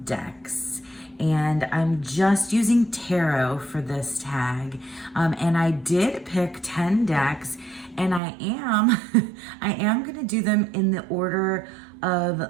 decks. And I'm just using tarot for this tag. And I did pick 10 decks, and I am gonna do them in the order of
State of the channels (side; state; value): left; drops out; at 8.2 s